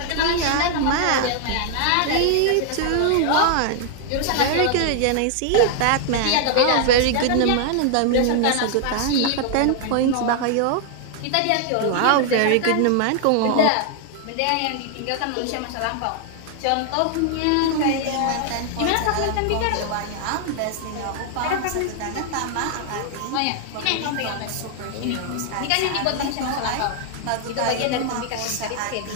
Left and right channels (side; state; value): both; different; correlation 0.00